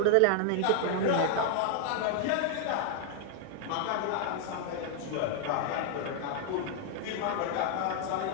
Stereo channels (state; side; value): different; both; correlation 0.00